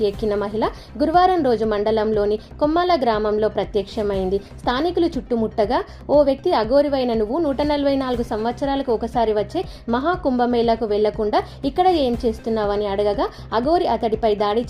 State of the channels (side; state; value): both; identical; correlation 1.00